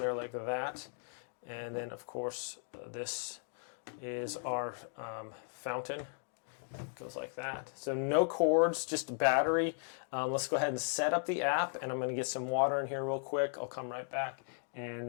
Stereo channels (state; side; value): silent; right; 53 dB below the other